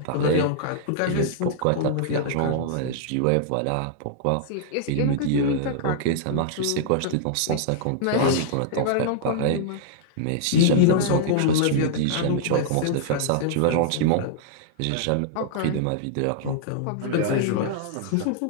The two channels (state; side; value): different; both; correlation -0.01